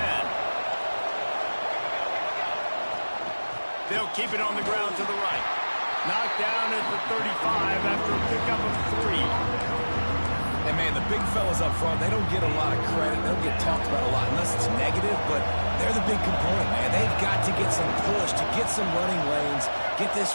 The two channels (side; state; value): both; inverted; correlation -1.00